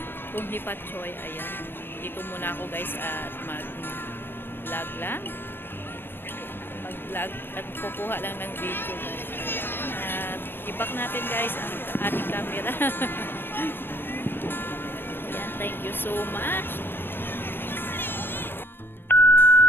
Kung Hee Fat Choi. Ayan. Dito muna ako guys at mag-vlog lang. Mag-vlog at kukuha lang ng video guys. Ayan. At i-back natin guys ang ating camera. Ayan, thank you so much.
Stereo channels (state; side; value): late; right; 0.099 ms